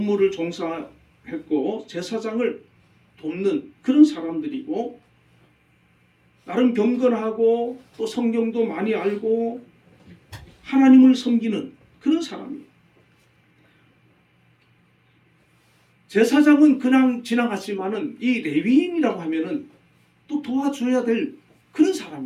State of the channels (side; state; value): both; identical; correlation 1.00